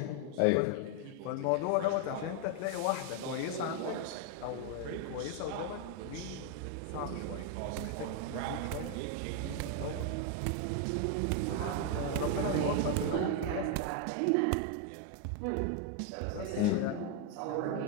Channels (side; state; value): both; different; correlation 0.01